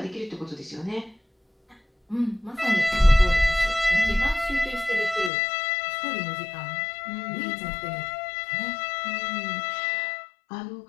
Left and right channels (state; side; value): drops out; right; at 5.3 s